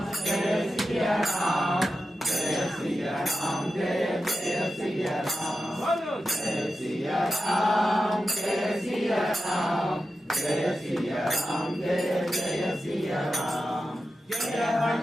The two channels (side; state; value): both; normal; correlation 0.91